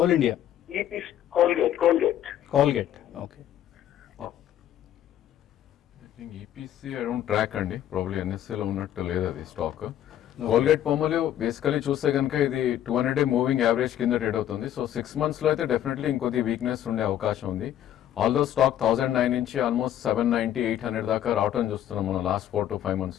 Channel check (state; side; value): quieter; right; 11.3 dB